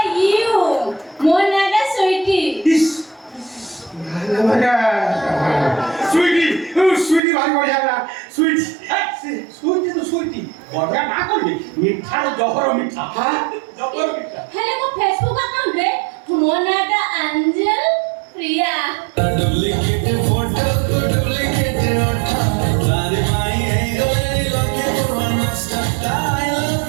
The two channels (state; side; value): drops out; left; at 7.2 s